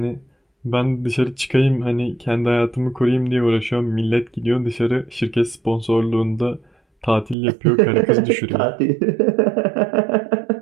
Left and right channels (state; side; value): drops out; left; at 7.4 s